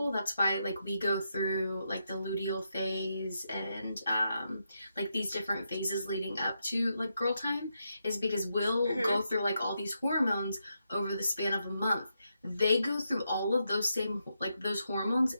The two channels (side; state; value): both; inverted; correlation -0.83